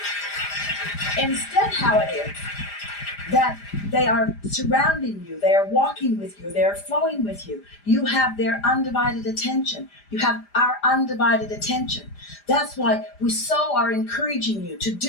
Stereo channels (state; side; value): late; right; 5.0 ms